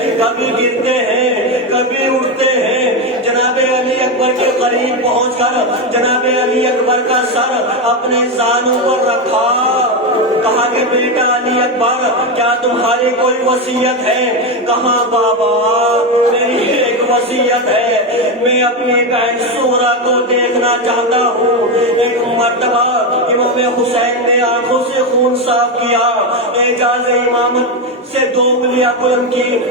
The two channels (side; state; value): both; normal; correlation 0.11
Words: کبھی گرتے ہیں کبھی اٹھتے ہیں۔ جناب علی اکبر کے قریب پہنچ کر جناب علی اکبر کا سر اپنے زانوں پر رکھا، کہا کہ بیٹا علی اکبر کیا تمہاری کوئی وصیت ہے؟ کہا بابا میری ایک وصیت ہے، میں اپنی بہن سورہ کو دیکھنا چاہتا ہوں۔ ایک مرتبہ امام حسین نے آنکھوں سے خون صاف کیا، اعجاز امامت سے 2 انگلیاں بلند کی